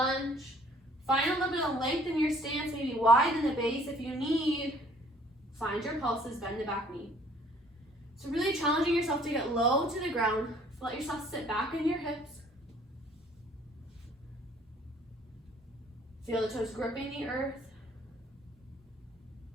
Find a little bit of length in your stance, maybe widen the base if you need. Find your pulses, bend the back knee. So really challenging yourself to get low to the ground. Let yourself sit back in your hips. Feel the toes gripping the earth.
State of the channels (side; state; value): both; normal; correlation 0.58